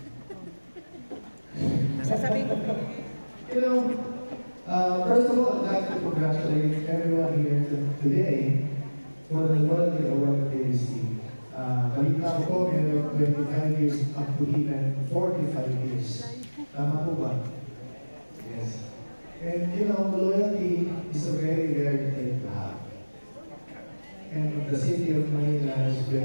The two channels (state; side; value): inverted; both; correlation -1.00